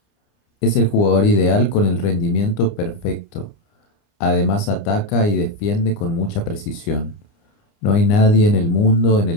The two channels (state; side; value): late; right; 29 ms